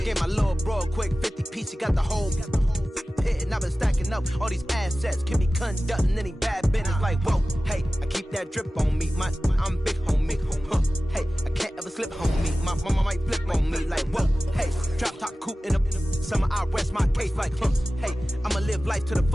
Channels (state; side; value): normal; both; correlation 0.96